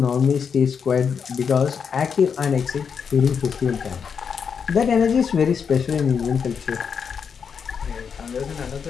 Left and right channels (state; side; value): quieter; right; 6.6 dB